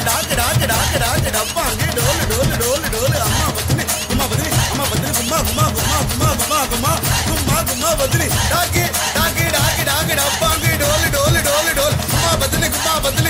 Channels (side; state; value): both; identical; correlation 1.00